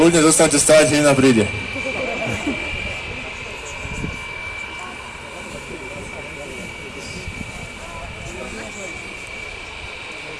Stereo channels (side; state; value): both; identical; correlation 1.00